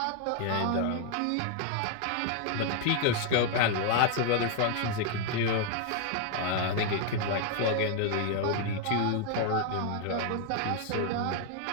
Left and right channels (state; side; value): different; both; correlation 0.00